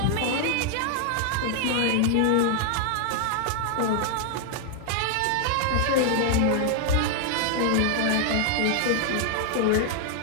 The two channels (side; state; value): both; different; correlation 0.00